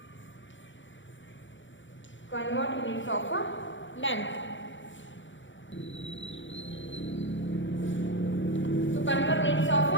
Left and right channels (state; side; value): late; right; 0.55 ms